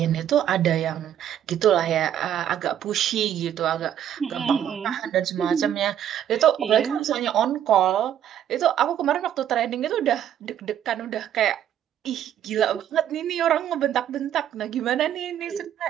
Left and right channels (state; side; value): quieter; left; 10.4 dB